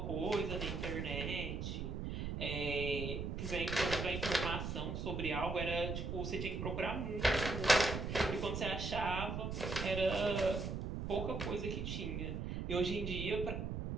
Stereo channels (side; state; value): right; noise; rumble, 3 dB below the sound